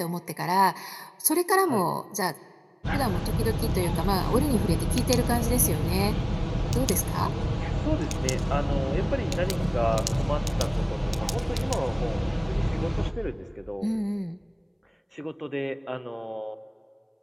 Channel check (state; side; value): identical; both; correlation 1.00